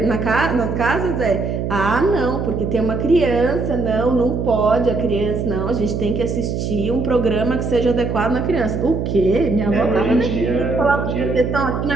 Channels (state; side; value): noise; right; hum, 2 dB below the sound